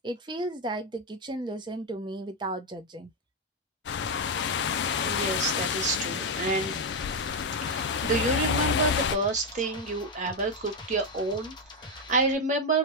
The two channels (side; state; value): both; normal; correlation 0.05